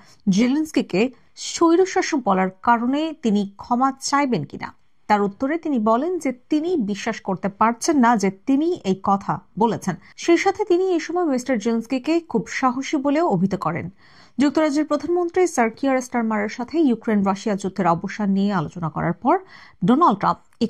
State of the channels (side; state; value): both; identical; correlation 1.00